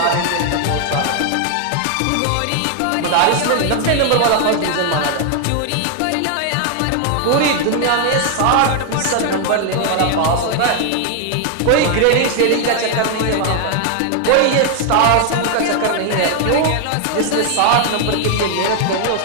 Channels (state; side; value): different; both; correlation 0.00